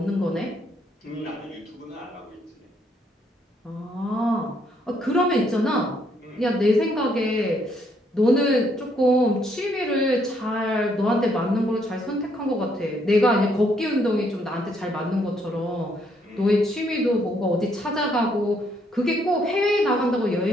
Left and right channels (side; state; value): both; normal; correlation 0.71